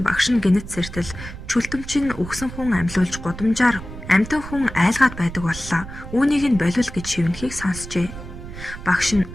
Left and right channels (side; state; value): right; noise; rumble, 12 dB below the sound